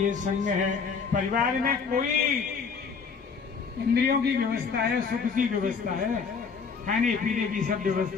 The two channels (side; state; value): right; quieter; 5.5 dB